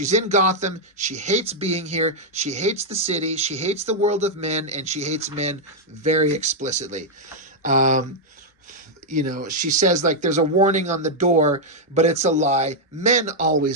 in Gotham, she hates being here, she hates the city, she hates the world of men, and she hates men very explicitly. She says, like, there's a warning on the door, but it's a lie. Men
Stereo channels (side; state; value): both; normal; correlation -0.02